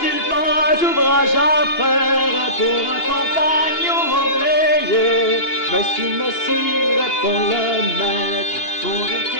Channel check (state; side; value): late; right; 2.8 ms